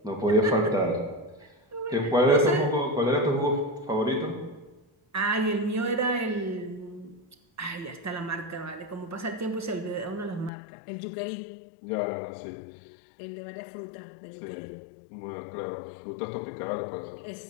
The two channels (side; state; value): right; drops out; at 10.5 s